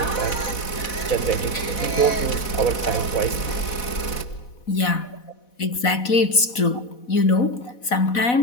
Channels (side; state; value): right; late; 4.1 ms